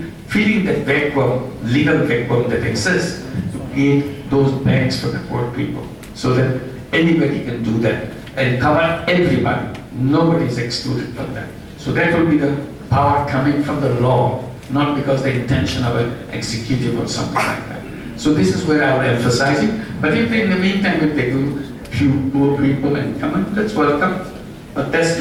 that vacuum, legal vacuum that exists, to create those banks for the poor people, so that anybody can do that and cover everybody. Nobody is excluded from that. So that will be the power coming from the law, not because the intention of an executive or something like that. So this is where I will emphasize it. But if in the meantime, if they do few poor people and come in, that's welcome. But that's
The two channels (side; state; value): both; identical; correlation 1.00